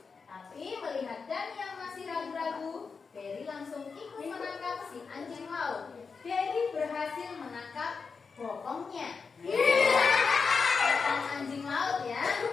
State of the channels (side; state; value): right; quieter; 5.1 dB